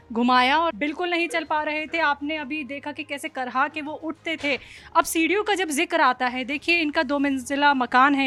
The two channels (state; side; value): identical; both; correlation 1.00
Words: घुमाया और बिल्कुल नहीं चल पा रहे थे। आपने अभी देखा कि कैसे करहा के वो उठते थे। अब सीढ़ियों का जब जिक्र आता है, देखिए इनका 2 मंजिला मकान है